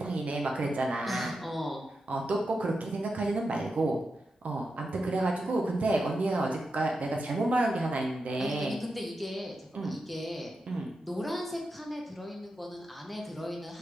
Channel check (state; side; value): normal; both; correlation 0.88